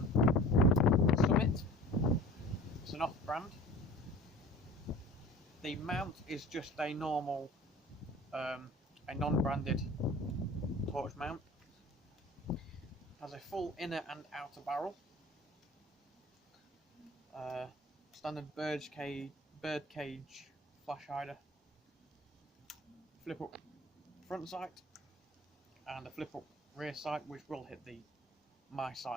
Summit. It's an off-brand. The mount is just a normal, a non-branded torch mount. Has a full inner and outer barrel. Standard bird cage flash hider. Flip up front sight and a flip up rear sight, which will hit my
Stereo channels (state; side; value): normal; both; correlation 0.43